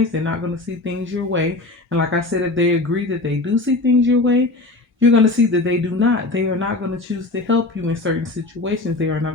They're not going to see things your way. And like I said, if they agree that they do see things your way, you're going to see that they do not. They are not going to choose to help you in certain situations. They are not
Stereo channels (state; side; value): quieter; right; 3.1 dB